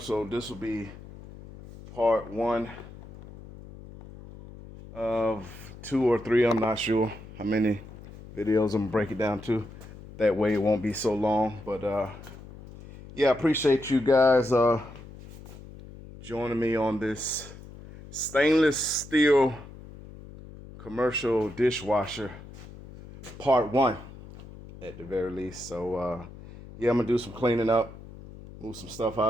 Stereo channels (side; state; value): left; noise; hum, 16 dB below the sound